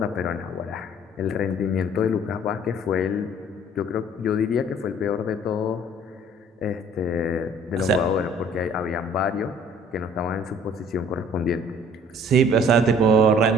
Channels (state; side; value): normal; both; correlation 0.54